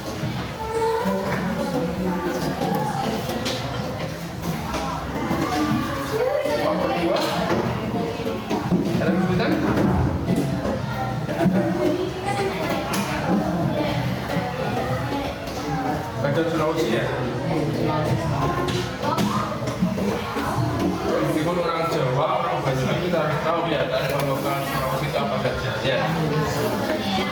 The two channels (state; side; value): identical; both; correlation 1.00